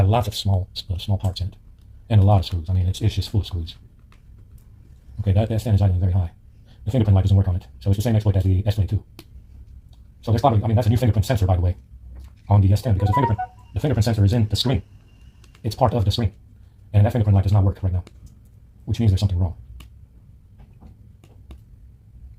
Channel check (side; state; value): both; identical; correlation 1.00